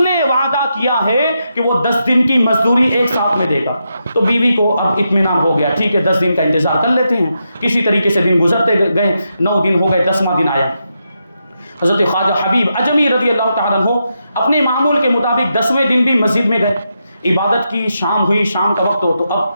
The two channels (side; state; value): both; inverted; correlation -0.84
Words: وعدہ کیا ہے کہ وہ 10 دن کی مزدوری ایک ساتھ میں دے گا۔ تو بیوی کو اب اطمینان ہو گیا، ٹھیک ہے 10 دن کا انتظار کر لیتے ہیں۔ کسی طریقے سے دن گزرتے گئے، 9 دن ہو گئے، 10واں دن آیا۔ حضرت خواجہ حبیب اجمی رضی اللہ تعالیٰ عنہ اپنے معمول کے مطابق 10ویں دن بھی مسجد میں گئے، عبادت کی، شام ہوئی، شام کا وقت ہو تو